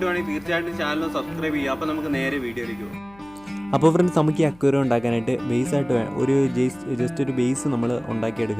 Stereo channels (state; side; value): noise; left; hum, 26 dB below the sound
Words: തീർച്ചയായിട്ടും ചാനൽ സബ്സ്ക്രൈബ് ചെയ്യുക. അപ്പോൾ നമുക്ക് നേരെ വീഡിയോയിലേക്ക് പോകും. അപ്പോൾ ഫ്രണ്ട്സ്, നമുക്ക് ഈ അക്വേറിയം ഉണ്ടാക്കാനായിട്ട് ബേസായിട്ട് ഒരു ജസ്റ്റ് ഒരു ബേസ് നമ്മൾ